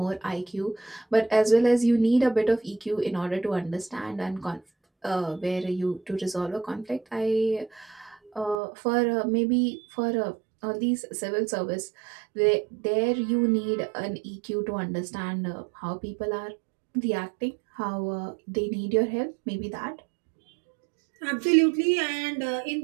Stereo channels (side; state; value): left; drops out; at 8.6 s